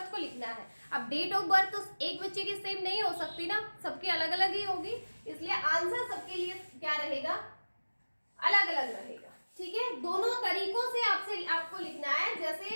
को लिखना है। अब डेट ऑफ बर्थ तो एक बच्चे की सेम नहीं हो सकती ना, सबकी अलग अलग ही होगी, इसलिए आंसर सबके लिए क्या रहेगा? अलग अलग रहेगा। ठीक है, दोनों तरीकों से आपको लिखना है,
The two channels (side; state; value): both; inverted; correlation -1.00